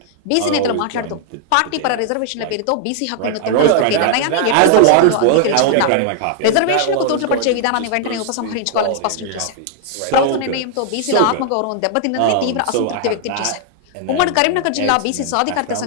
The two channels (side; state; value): both; different; correlation 0.00